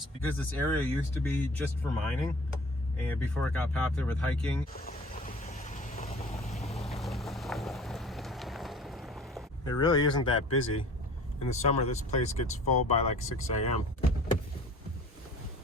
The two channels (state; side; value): normal; both; correlation 0.46